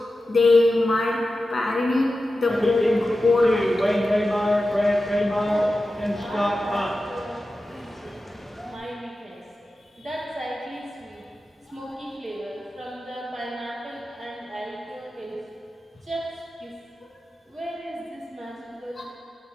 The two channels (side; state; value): both; normal; correlation 0.93